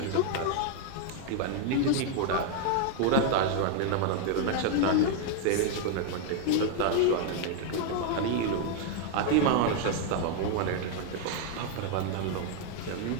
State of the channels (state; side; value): different; both; correlation 0.00